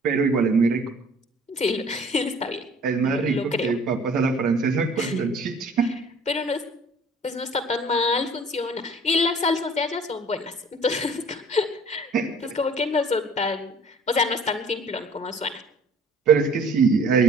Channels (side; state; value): both; normal; correlation 0.51